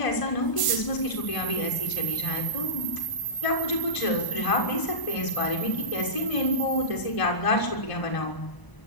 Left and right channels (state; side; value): late; right; 1.0 ms